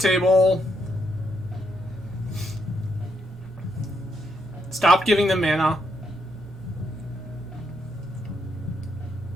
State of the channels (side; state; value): both; normal; correlation 0.78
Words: Stop giving them mana.